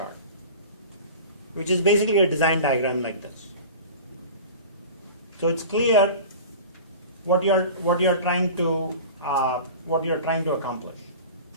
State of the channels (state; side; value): inverted; both; correlation -0.37